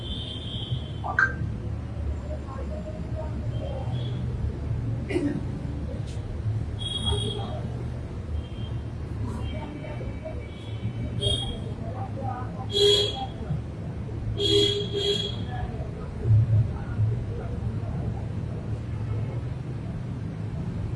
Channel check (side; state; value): both; identical; correlation 1.00